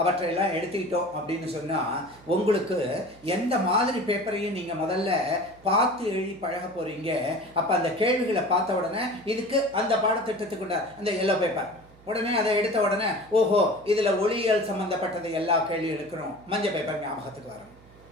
அவற்றையெல்லாம் எடுத்துக்கிட்டோம் அப்படின்னு சொன்னால் உங்களுக்கு எந்த மாதிரி பேப்பரையும் நீங்கள் முதல்ல பார்த்து எழுதி பழக போகிறீங்க. அப்போ அந்த கேள்விகளை பார்த்த உடனே இதுக்கு அந்த பாடத்திட்டத்துக்குண்ட அந்த எல்லோ பேப்பர் உடனே அதை எடுத்த உடனே ஓஹோ இதில் ஒளியியல் சம்மந்தப்பட்டது எல்லா கேள்வி எடுக்கணும், மஞ்சள் பேப்பர் ஞாபகத்துக்கு வரணும்.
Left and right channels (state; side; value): noise; right; hum, 26 dB below the sound